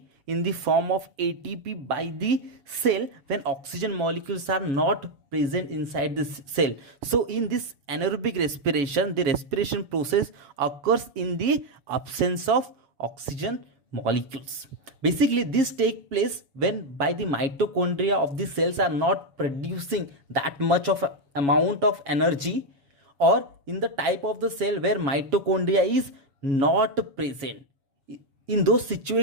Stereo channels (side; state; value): left; late; 7.1 ms